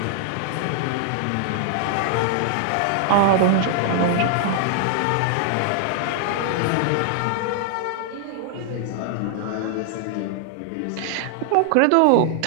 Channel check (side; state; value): both; different; correlation -0.01